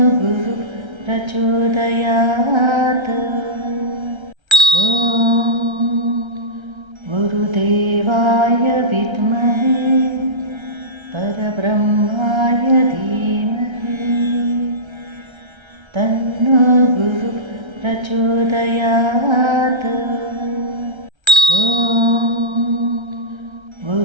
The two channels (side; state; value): left; late; 1.3 ms